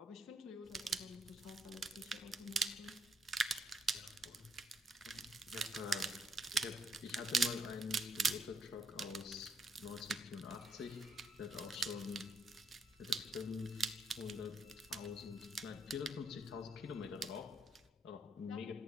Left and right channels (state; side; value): normal; both; correlation 0.74